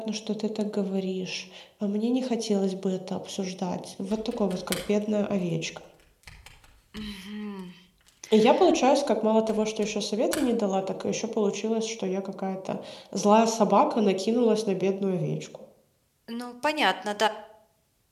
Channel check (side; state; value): both; identical; correlation 1.00